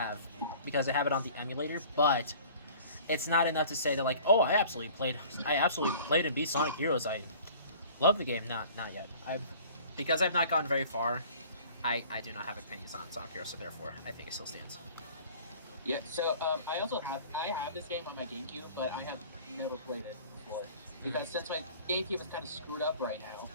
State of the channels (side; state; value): both; inverted; correlation -0.48